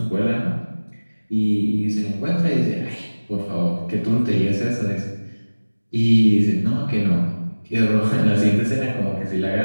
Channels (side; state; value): both; inverted; correlation -1.00